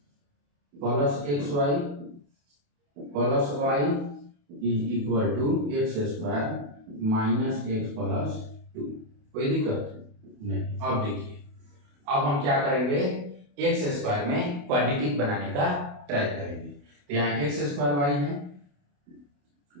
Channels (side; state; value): left; late; 28 ms